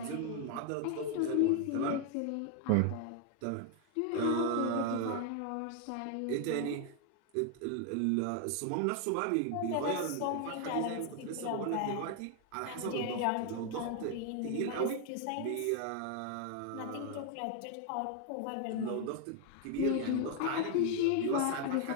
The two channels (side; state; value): both; different; correlation 0.01